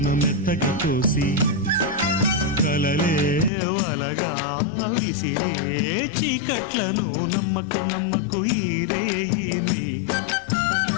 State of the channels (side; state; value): right; drops out; at 3.5 s